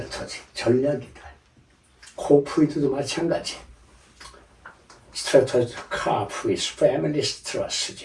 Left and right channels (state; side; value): identical; both; correlation 1.00